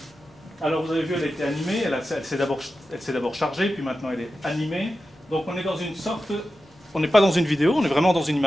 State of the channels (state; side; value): normal; both; correlation 0.92